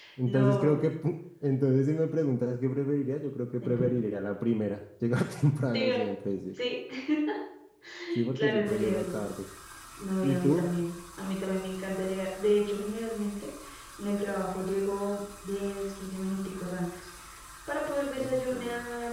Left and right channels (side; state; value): both; identical; correlation 1.00